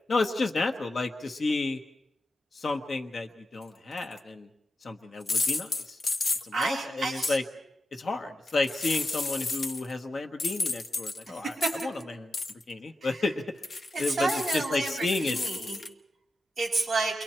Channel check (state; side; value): normal; both; correlation 0.89